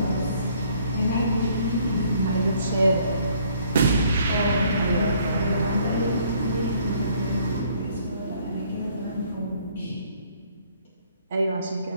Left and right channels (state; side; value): inverted; both; correlation -0.62